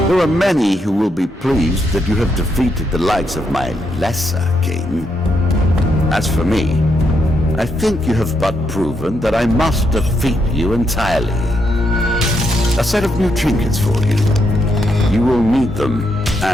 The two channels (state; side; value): normal; both; correlation 0.79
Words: There are many who will be pleased that you have defeated the likes of my lesser king. As for me, I think you have but proven that I must defeat you entirely. A set of new trinkets for you. You will need them,